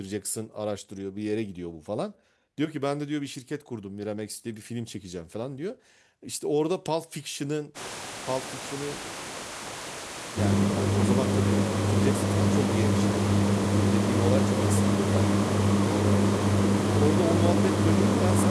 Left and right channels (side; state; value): both; identical; correlation 1.00